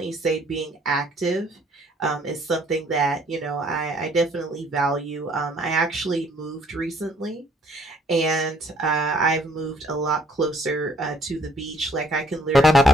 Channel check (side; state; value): both; normal; correlation 0.62